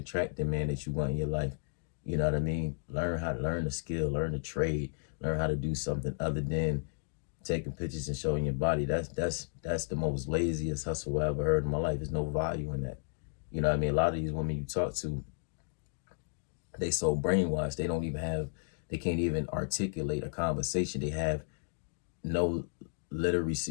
the man that you want in your life. You know what I mean? Learn a skill, learn a trade, learn how to do something other than taking pictures and showing your body. That's the most laziest hustle I ever heard in my life. There's no value in that. You know what I mean? A lot of these women you talk to, they so brainwashed, they can't even articulate a conversation. They have no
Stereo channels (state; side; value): silent; right; digital silence